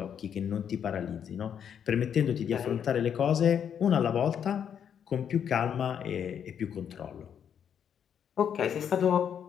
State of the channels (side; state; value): right; quieter; 8.3 dB